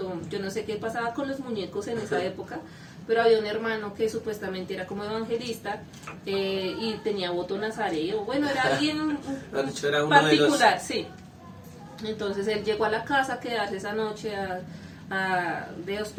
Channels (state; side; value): identical; both; correlation 1.00